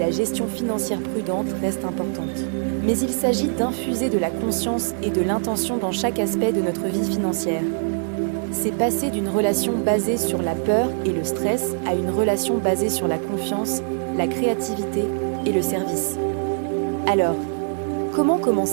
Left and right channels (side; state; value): left; silent; 60 dB below the other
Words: gestion financière prudente reste importante. Mais il s'agit d'infuser de la conscience et de l'intention dans chaque aspect de notre vie financière. C'est passer d'une relation basée sur la peur et le stress à une relation basée sur la confiance, la créativité et le service. Alors, comment